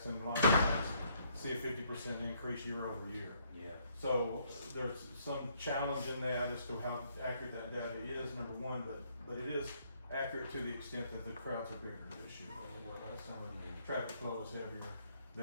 and license tax, see a 50% increase year over year. Yeah. So there's some challenge in that as to how accurate that data is, number one, but it is accurate to the extent that the crowds are bigger this year. Some of the traffic flow is heavier,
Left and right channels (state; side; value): inverted; both; correlation -0.69